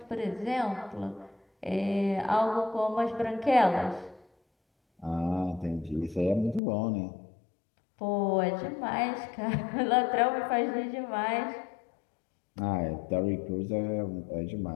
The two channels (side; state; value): right; drops out; at 6.6 s